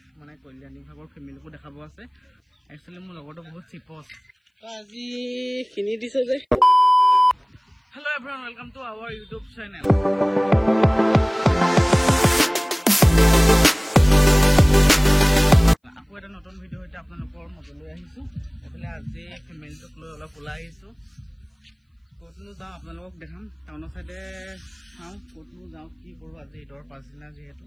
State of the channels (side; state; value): both; identical; correlation 1.00